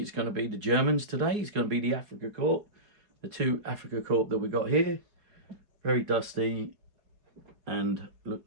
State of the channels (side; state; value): left; late; 4.7 ms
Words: going to be the Germans today. It's going to be the Africa Korps, the two Africa Korps that we got here. Very dusty, and look,